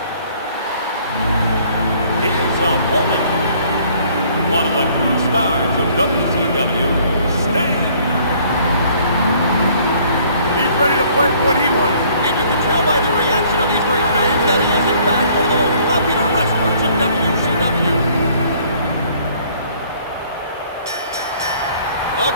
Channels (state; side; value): inverted; both; correlation -0.59